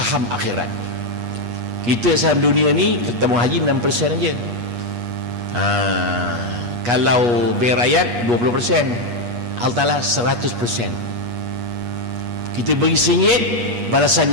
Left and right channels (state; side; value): late; left; 8.4 ms